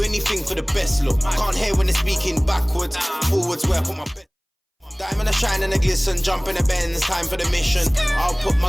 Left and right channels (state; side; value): identical; both; correlation 1.00